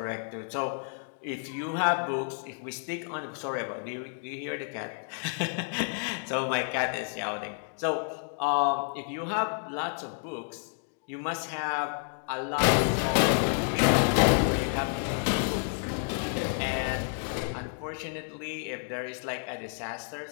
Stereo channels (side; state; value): right; silent; 58 dB below the other